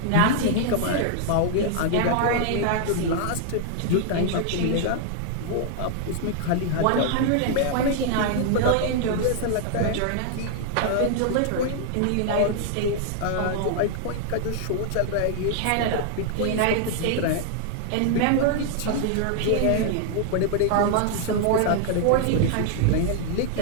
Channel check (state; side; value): different; both; correlation 0.00